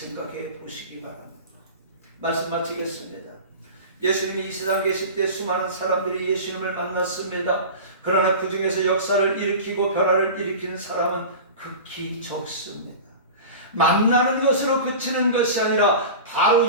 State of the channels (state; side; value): inverted; both; correlation -0.33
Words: 보시기 바랍니다. 말씀 마치겠습니다. 예수님이 이 세상 계실 때 수많은 사람들이 예수님을 만났습니다. 그러나 그 중에서 역사를 일으키고 변화를 일으키는 사람은 극히 적습니다. 만나는 것으로 그치는 것이 아니라 바로